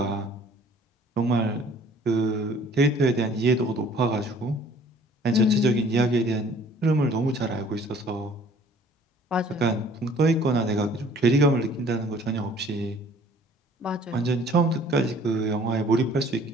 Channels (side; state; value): both; normal; correlation 0.54